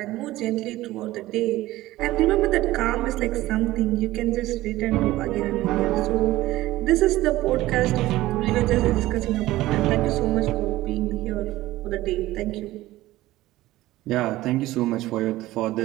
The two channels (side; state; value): left; quieter; 16.7 dB